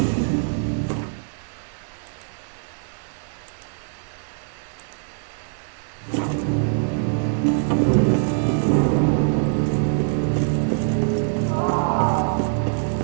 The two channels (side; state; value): left; silent; digital silence